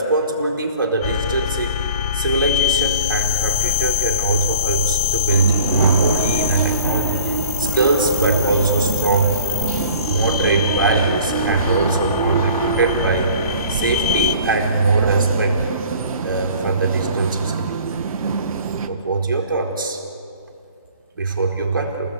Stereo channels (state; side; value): inverted; both; correlation -0.49